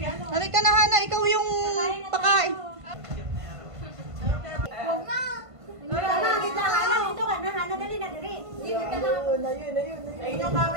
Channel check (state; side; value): late; left; 1.5 ms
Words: Halika na, Hana. Ikaw yung pakain. Huwag na. Hana, kita. Hana, dito ka na. Hana, dali na, dali. Ayun yung